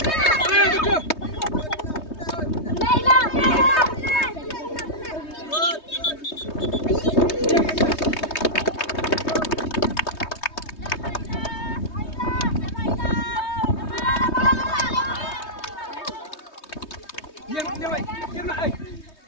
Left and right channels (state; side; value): late; right; 3.2 ms